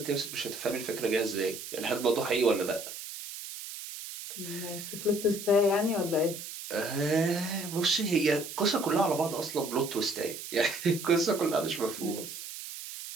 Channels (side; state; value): right; noise; hiss, 10 dB below the sound